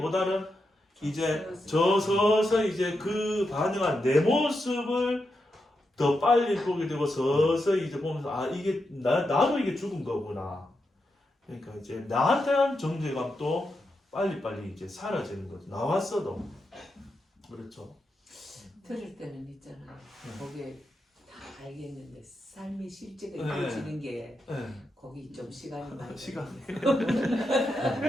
이제 서서히 이제 그 반응한 내 모습을 더 빨리 보게 되고 서서히 이제 보면서 이게 나도 이게 죽은 거구나. 그러니까 이제 나한테 한 정죄감도 빨리 이제 사라지는 거죠. 나왔어도. 그렇죠. 들을 때는 있잖아요. 거기에 다 알겠는데 삶의 실제가 이루어지는 게 거기 좀 시간이 많이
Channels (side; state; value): both; normal; correlation 0.86